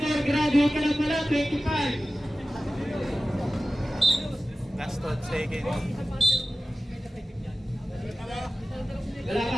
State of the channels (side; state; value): both; normal; correlation 0.95